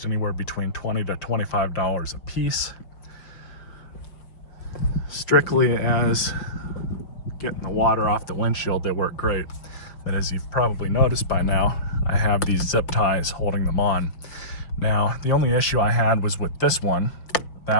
anywhere between $20 to $25 a piece. Strictly as getting the water off the windshield, they work great. But as you've probably noticed by now, I have these zip ties holding them on. Now, the only issue I had was with this one.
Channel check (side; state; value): right; late; 5.3 ms